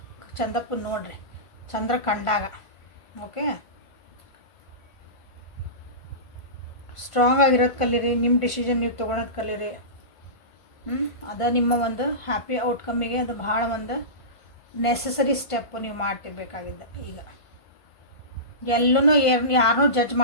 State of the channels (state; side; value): late; right; 1.5 ms